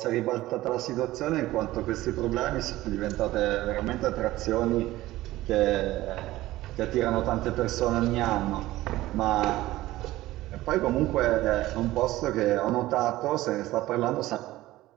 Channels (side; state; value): left; quieter; 16.7 dB